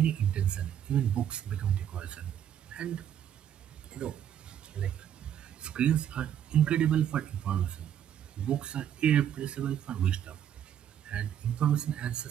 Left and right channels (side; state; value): left; quieter; 9.9 dB